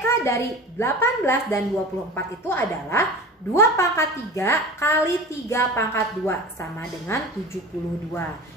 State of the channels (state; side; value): normal; both; correlation 0.34